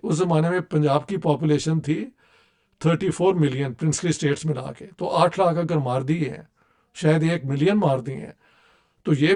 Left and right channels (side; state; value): both; identical; correlation 1.00